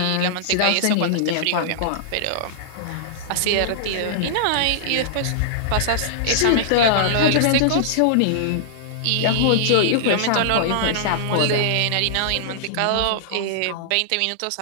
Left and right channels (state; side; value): different; both; correlation -0.02